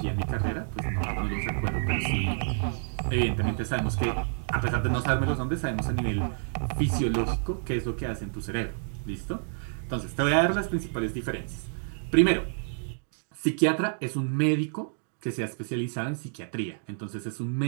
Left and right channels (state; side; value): silent; left; digital silence